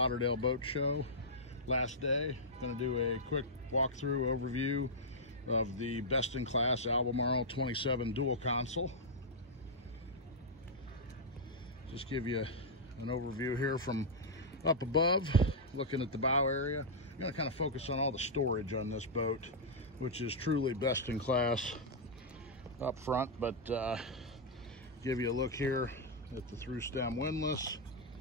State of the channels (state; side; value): normal; both; correlation -0.07